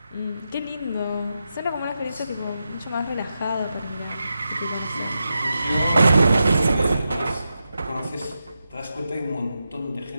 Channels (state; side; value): inverted; both; correlation -0.88